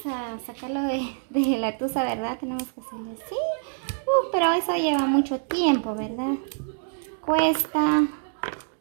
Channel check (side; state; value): left; silent; digital silence